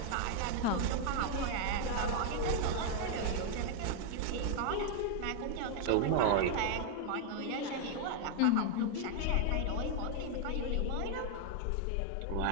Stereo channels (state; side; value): different; both; correlation 0.00